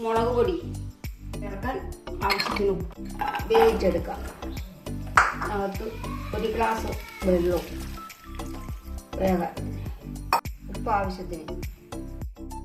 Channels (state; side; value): identical; both; correlation 1.00